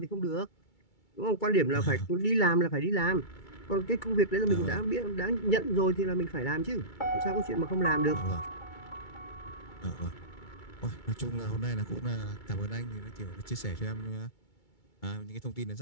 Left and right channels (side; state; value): right; late; 2.3 ms